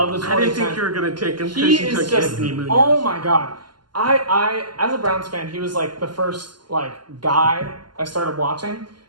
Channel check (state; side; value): late; left; 0.71 ms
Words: I didn't think you were going to take him because He you is took just, Anthony Munoz. oh my God. I as a Browns fan, he was the first guy I started watching,